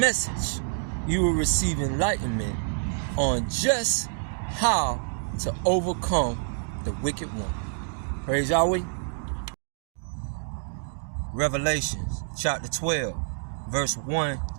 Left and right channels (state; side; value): silent; left; digital silence